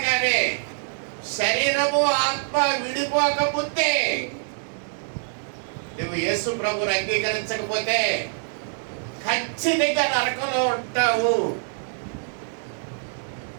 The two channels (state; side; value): silent; left; digital silence